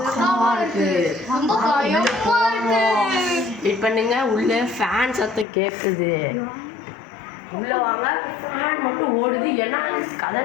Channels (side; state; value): right; drops out; at 5.5 s